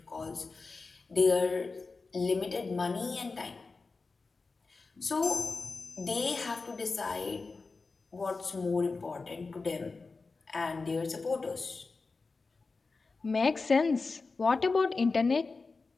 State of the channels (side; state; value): right; quieter; 4.1 dB